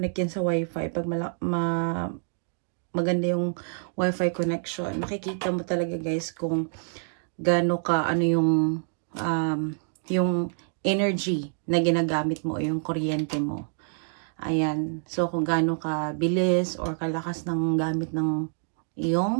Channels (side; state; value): left; silent; digital silence